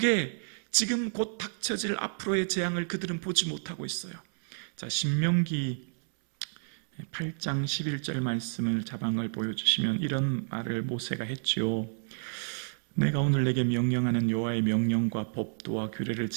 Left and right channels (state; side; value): silent; left; 58 dB below the other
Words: 지금 곧 닥쳐질 앞으로의 재앙을 그들은 보지 못하고 있어요. 자, 신명기 8장 11절 말씀을 자방을 보여주시면 이런 말을 모세가 했죠. 내가 오늘 내게 명령하는 여호와의 명령과 법도와 규례를